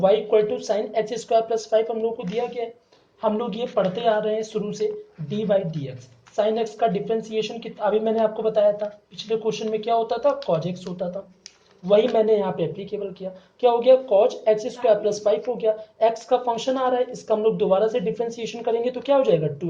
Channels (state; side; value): identical; both; correlation 1.00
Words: equal to sine x square plus five हम लोग को दिया गया है। हम लोग ये पढ़ते आ रहे हैं शुरू से, D by d x. Sine x का डिफ्रेंसिएशन कितना, अभी मैंने आपको बताया था पिछले क्वेश्चन में क्या होता था, कॉज एक्स होता था, वही मैंने यहाँ पे एप्लीकेबल किया। क्या हो गया, cause x square plus five हो गया। एक्स का फंक्शन आ रहा है, इसका हम लोग दोबारा से डिफ्रेंसिएशन करेंगे तो क्या हो जाएगा,